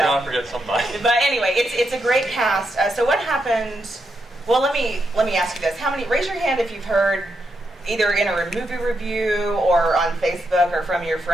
forget somebody. But anyway, it's a great cast. So what happened? Well, let me ask you this: raise your hand if you've heard, either in a movie review or on Facebook or from your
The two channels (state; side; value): normal; both; correlation 0.82